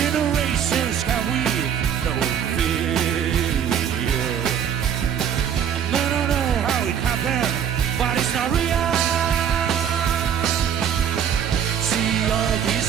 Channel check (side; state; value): left; quieter; 8.6 dB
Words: can we no fear. I don't know how it happened, but it's not real. See all